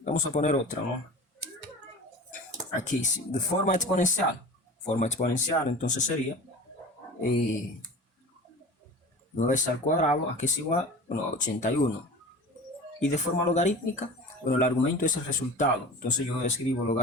Vamos a poner otra, ¿no? Aquí, de forma exponencial. Forma exponencial, entonces sería 9 al cuadrado, aquí es igual, bueno, a 81. Y de forma logarítmica, bueno, el argumento es el resultado. Entonces yo escribo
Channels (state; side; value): normal; both; correlation 0.36